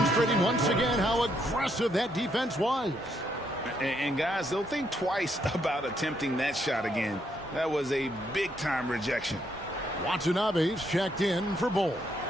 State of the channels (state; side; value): normal; both; correlation 0.74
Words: once again how aggressive that defense was. And guys, they'll think twice about attempting that shot again. That was a big-time rejection. Watanabe's checked in for Bull.